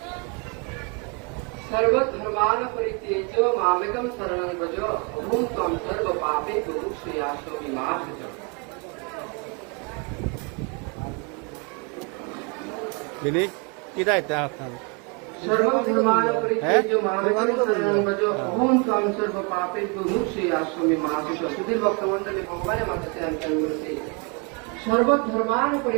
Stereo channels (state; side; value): quieter; left; 33.6 dB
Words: सर्वधर्मान परित्यज्य मामेकं शरणं व्रज अहं त्वं सर्वपापेभ्यो मोक्षयास्यामि मा शुचः। Ini kita itu apa? सर्वधर्मान परित्यज्य मामेकं शरणं व्रज अहं त्वं सर्वपापेभ्यो मोक्षयास्यामि मा शुचः। सुधीर भक्तमंडলী ভগবানের মাঝে অন্তর করেছে सर्वधर्मान